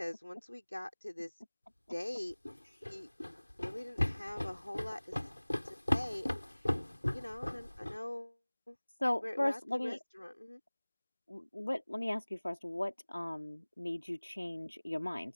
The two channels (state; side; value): inverted; both; correlation -1.00